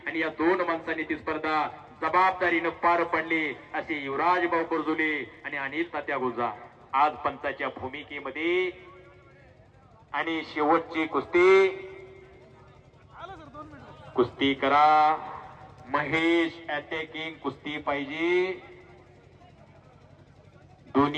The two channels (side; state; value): both; identical; correlation 1.00